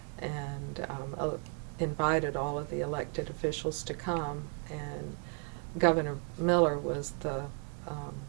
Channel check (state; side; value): quieter; left; 39.8 dB